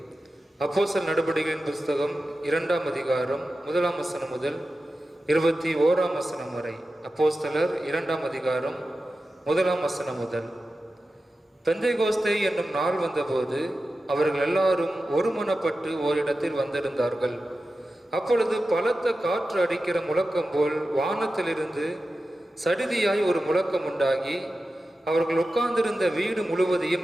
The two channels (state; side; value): normal; both; correlation 0.93